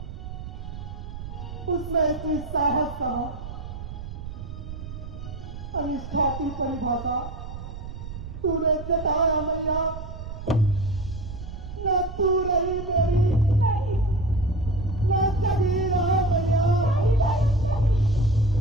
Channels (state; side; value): noise; right; rumble, 10 dB below the sound